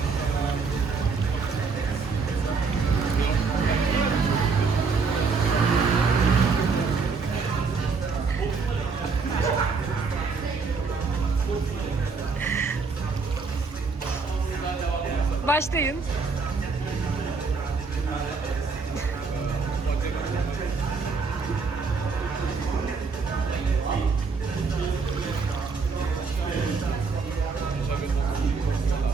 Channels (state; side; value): quieter; left; 4.7 dB